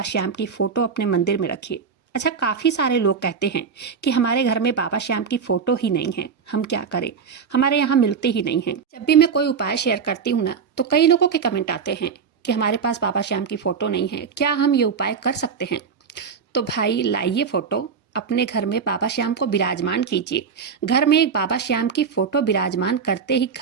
श्याम की फ़ोटो अपने मंदिर में रखिए। अच्छा, काफ़ी सारे लोग कहते हैं कि हमारे घर में बाबा श्याम की फ़ोटो ही नहीं है, हम क्या करें, हमारे यहाँ मिलते ही नहीं हैं। जब भी मैं कोई उपाय शेयर करती हूँ ना, तो कई लोगों के कमेंट आते हैं कि हमारे पास बाबा श्याम की फ़ोटो नहीं है, क्या हम ये उपाय कर सकते हैं? तो भाई लाइए फ़ोटो, अपने घर में बाबा श्याम को विराजमान कीजिए। घर में एक बाबा श्याम की फ़ोटो विराजमान करते ही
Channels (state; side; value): quieter; left; 6.2 dB